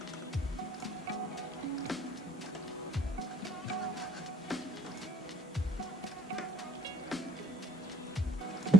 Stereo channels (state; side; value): normal; both; correlation 0.61